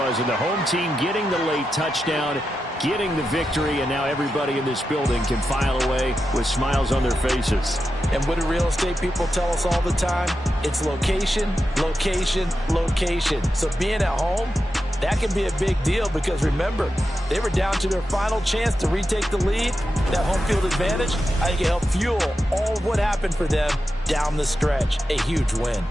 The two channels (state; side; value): normal; both; correlation 0.89